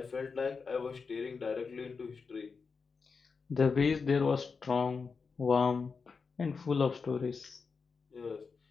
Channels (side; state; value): right; quieter; 5.0 dB